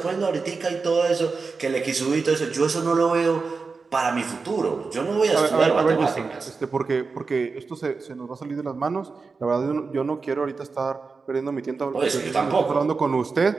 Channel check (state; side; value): quieter; left; 4.5 dB